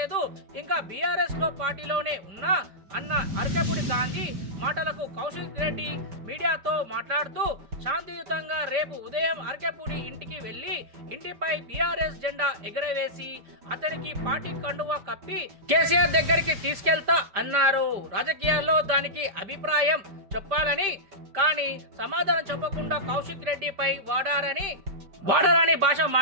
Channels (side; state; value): left; late; 5.1 ms